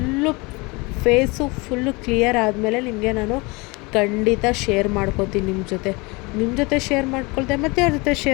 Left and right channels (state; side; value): quieter; right; 26.2 dB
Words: ಫೇಸು ಫುಲ್ಲು ಕ್ಲಿಯರ್ ಆದಮೇಲೆ ನಿಮಗೆ ನಾನು ಖಂಡಿತ ಶೇರ್ ಮಾಡ್ಕೋತೀನಿ ನಿಮ್ಮ ಜೊತೆ ಶೇರ್ ಮಾಡ್ಕೊಳ್ತೆ ಮತ್ತು ಅವ್ರ ಜೊತೆ